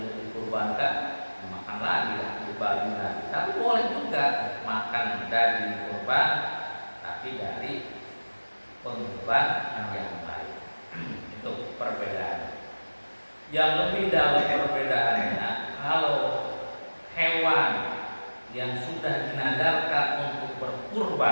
dikurbankan, makan lagi lah, dibagi lagi. Tapi boleh juga makan daging kurban, tapi dari pengurban yang lain. Itu perbedaan. Yang lebih dalam perbedaannya, kalau hewan yang sudah dinadarkan untuk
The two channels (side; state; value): both; inverted; correlation -1.00